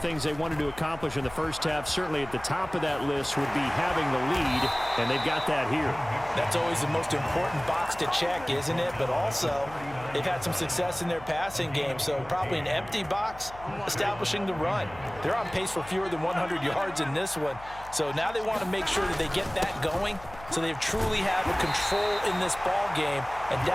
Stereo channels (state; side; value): noise; left; hum, 18 dB below the sound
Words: they wanted to accomplish in the first half, certainly at the top of that list would be having the lead, and they've got that here. That's always the most important box to check, isn't it? But also, they've had some success in their passing game, so probably an empty box establishing the run. They're on pace for fewer than 100 yards in this one, so now they want to make sure that they get that going so they truly have a control in this ball game, and